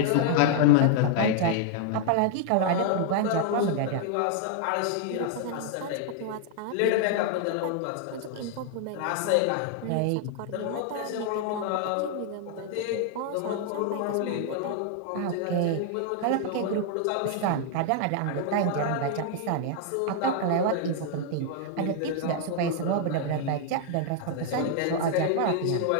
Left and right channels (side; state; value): both; different; correlation 0.00